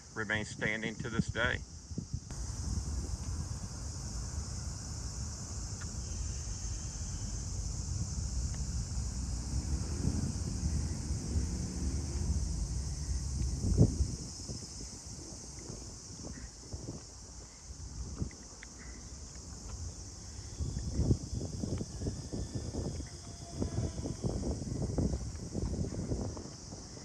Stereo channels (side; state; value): both; identical; correlation 1.00